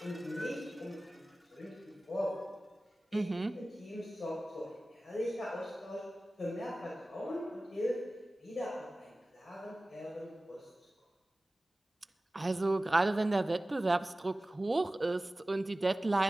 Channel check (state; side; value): normal; both; correlation 0.97